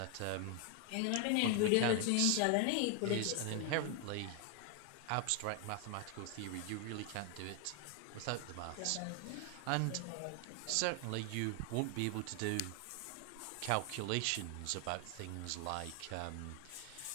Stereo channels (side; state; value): both; different; correlation 0.00